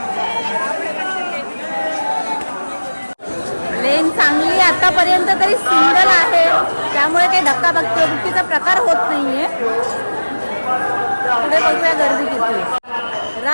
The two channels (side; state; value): both; inverted; correlation -1.00